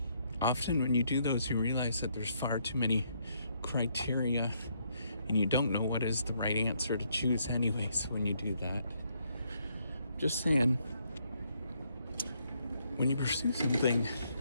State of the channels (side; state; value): both; inverted; correlation -0.73